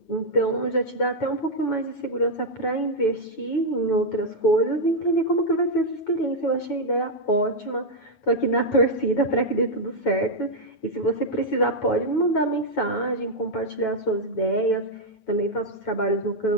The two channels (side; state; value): right; late; 9.2 ms